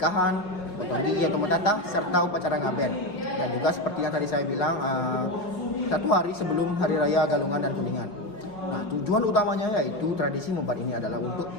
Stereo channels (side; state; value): right; late; 4.8 ms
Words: potong gigi atau mentatah, serta upacara ngaben. Dan juga seperti yang tadi saya bilang, 1 hari sebelum Hari Raya Galungan dan Kuningan. Nah, tujuan utamanya yaitu tradisi membat ini adalah untuk